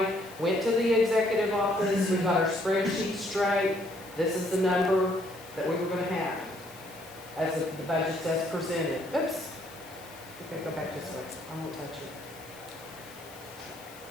went to the executive office. We got our spreadsheet straight. This is the number that we were going to have as the budget as presented. Oops. Okay, go back this way. I won't touch it.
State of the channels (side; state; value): left; noise; hiss, 21 dB below the sound